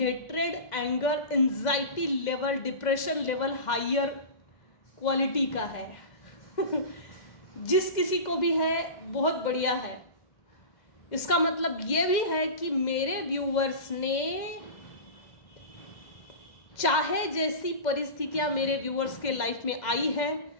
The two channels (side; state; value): right; late; 2.0 ms